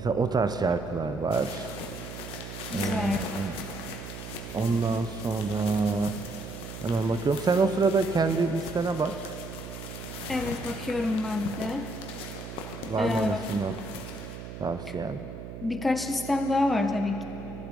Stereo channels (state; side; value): noise; right; hum, 10 dB below the sound